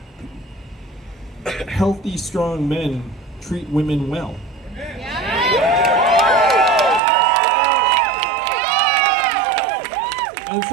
healthy, strong men treat women well. And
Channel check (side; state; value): left; drops out; at 7.0 s